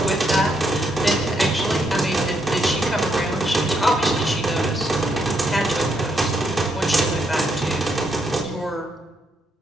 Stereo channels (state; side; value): normal; both; correlation 0.76